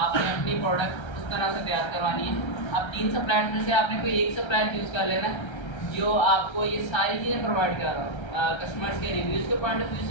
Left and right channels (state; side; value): late; right; 1.3 ms